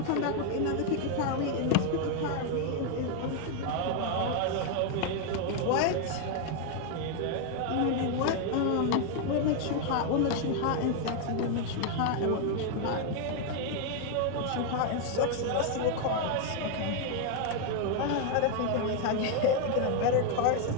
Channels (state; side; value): different; both; correlation 0.00